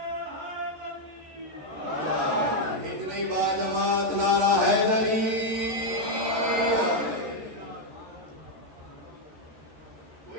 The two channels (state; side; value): late; left; 13 ms